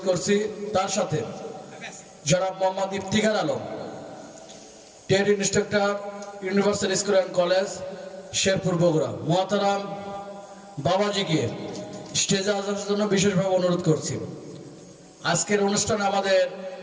করছি। তার সাথে জনাব Mohammad Iftikhar Alam, TET instructor, universal school and college, Sherpur, Bogura. মোহতারাম বাবাজিকে স্টেজে আসার জন্য বিশেষভাবে অনুরোধ করছি। আজকের অনুষ্ঠানে আমাদের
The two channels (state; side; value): identical; both; correlation 1.00